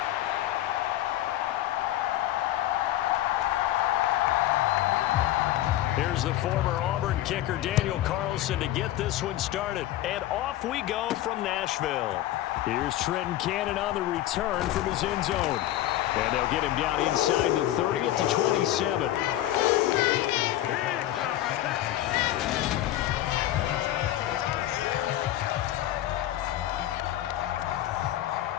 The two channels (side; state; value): right; quieter; 14.0 dB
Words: Here's the former Auburn kicker Daniel Carlson to get this one started. And off we go from Nashville. Here's Trenton Cannon on the return from his end zone. And they'll get him down inside the 30 at the 27.